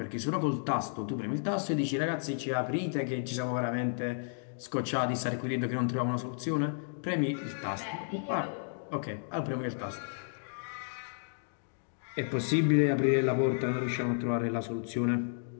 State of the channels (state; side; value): silent; right; digital silence